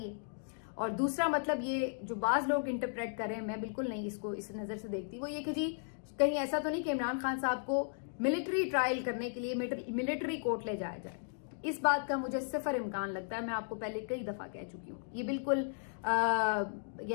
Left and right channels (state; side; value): silent; right; digital silence